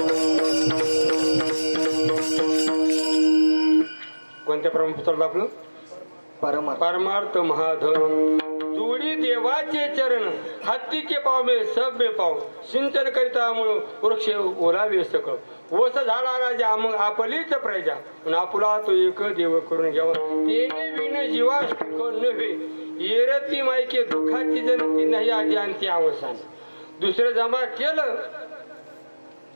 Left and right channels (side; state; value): both; inverted; correlation -1.00